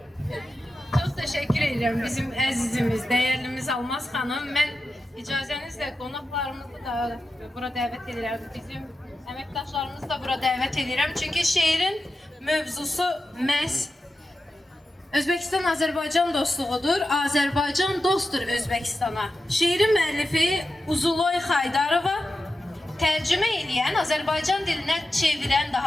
Çox təşəkkür edirəm bizim əzizimiz, dəyərlimiz Almaz xanım. Mən icazənizlə qonaqlarımızı da bura dəvət edirəm. Bizim əməkdaşlarımızı da bura dəvət edirəm. Çünki şeirin mövzusu məhz Özbəkistan-Azərbaycan dostluğudur. Azərbaycan dostdur Özbəkistana. Şeirin müəllifi Uzuloy Xaydarova, tərcümə edən, Azərbaycan dilinə çevirən,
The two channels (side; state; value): both; normal; correlation 0.91